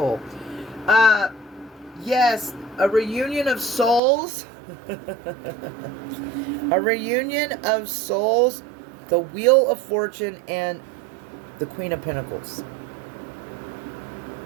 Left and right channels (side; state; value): left; drops out; at 4.0 s